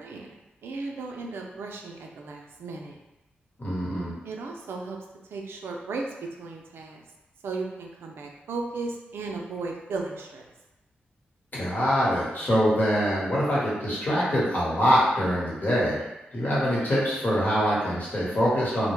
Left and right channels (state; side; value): normal; both; correlation 0.84